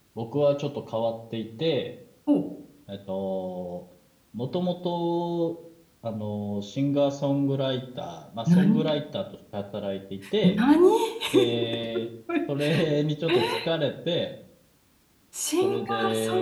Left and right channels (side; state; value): both; identical; correlation 1.00